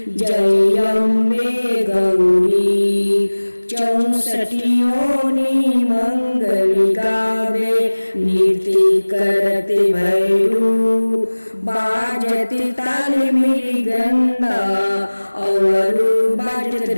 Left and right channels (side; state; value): both; inverted; correlation -1.00